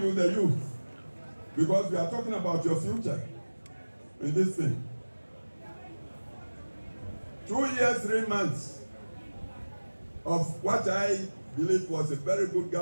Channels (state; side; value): inverted; both; correlation -1.00